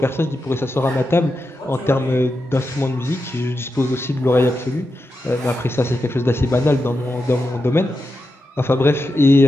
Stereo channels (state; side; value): normal; both; correlation 0.88